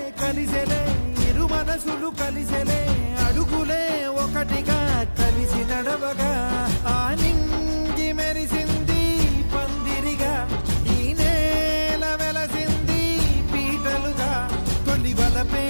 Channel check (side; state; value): both; inverted; correlation -1.00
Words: కలిసెలే ఇరు మనసులు కలిసెలే అడుగులే ఒకటిగా కలిసి నడవగా ఆ నింగి మెరిసింది పందిరిగా ఈ నేల వెలసింది పీటలుగా తొలి వలపే